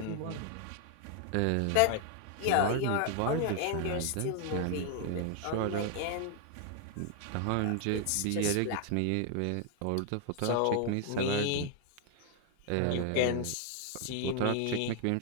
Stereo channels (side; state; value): both; different; correlation 0.00